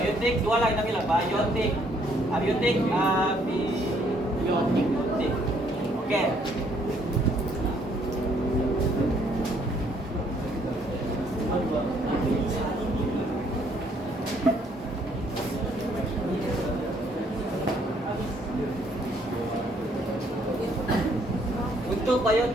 dua lah kita bilang. Biotik, abiotik, abiotik. Okey. Untuk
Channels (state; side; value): normal; both; correlation 0.66